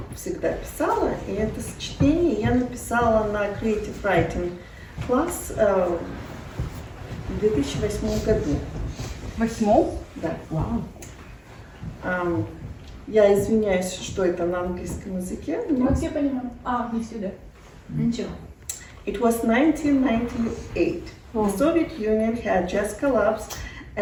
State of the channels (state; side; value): identical; both; correlation 1.00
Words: всегда писала, и это сочетение я написала на Creative Writing класс в 2008 году. Восьмом? Да. Вау. Я извиняюсь, что это на английском языке. Мы все понимаем. Не сюда. Ничего. It was 1998. The Soviet Union had just collapsed,